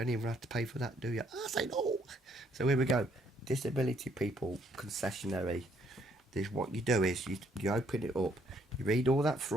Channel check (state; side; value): normal; both; correlation 0.68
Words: even have to pay for that, do you? I say no. So here we go. Disability people concessionary. This, what you do is you open it up. You read all that